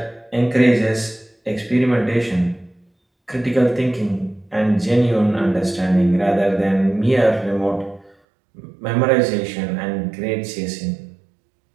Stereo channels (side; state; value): left; drops out; at 8.2 s